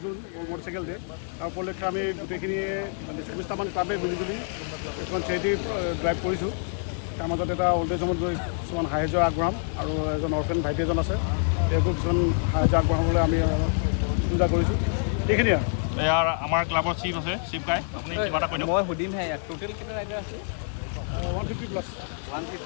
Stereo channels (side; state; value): right; silent; 60 dB below the other